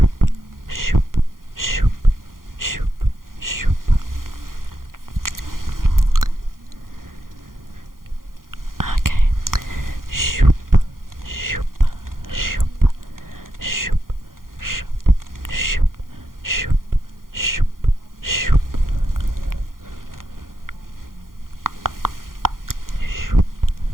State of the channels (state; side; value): late; left; 0.91 ms